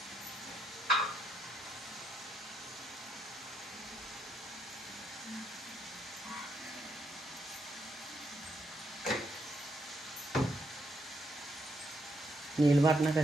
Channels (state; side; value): normal; both; correlation 0.78